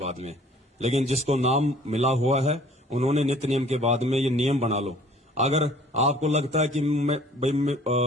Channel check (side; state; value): both; normal; correlation 0.53